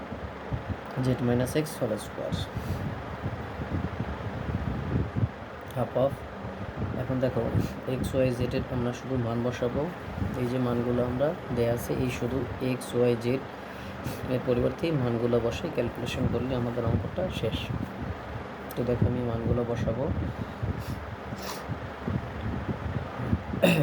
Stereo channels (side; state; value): both; identical; correlation 1.00